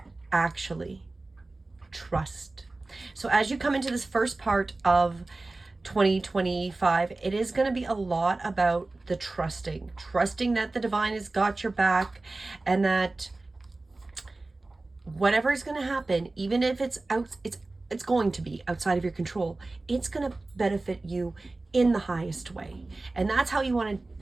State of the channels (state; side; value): quieter; left; 3.2 dB